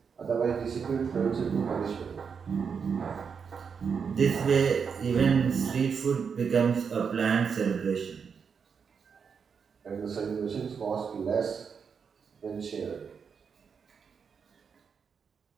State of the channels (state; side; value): quieter; left; 6.3 dB